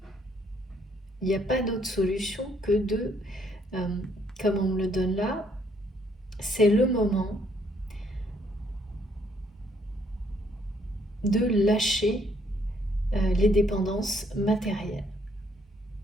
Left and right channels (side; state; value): both; normal; correlation 0.68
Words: il n'y a pas d'autre solution que de, comme on me le donne là, c'est le moment de lâcher les dépendances matérielles.